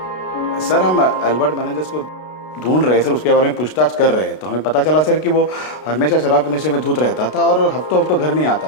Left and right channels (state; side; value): late; right; 32 ms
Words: सर हम अल्बर्ट मेनेंजेस को ढूंढ रहे हैं सर, उसके बारे में पूछताछ कर रहे हैं। तो हमें पता चला सर कि वो हमेशा शराब के नशे में धुत रहता था और हफ्तों हफ्तों घर नहीं